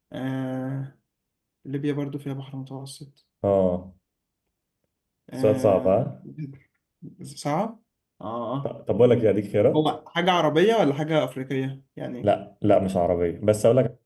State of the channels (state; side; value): identical; both; correlation 1.00